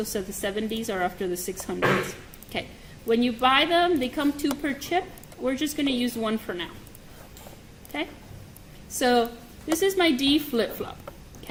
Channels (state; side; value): identical; both; correlation 1.00